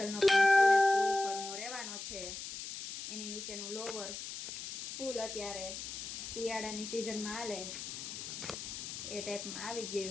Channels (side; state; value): left; noise; hiss, 8 dB below the sound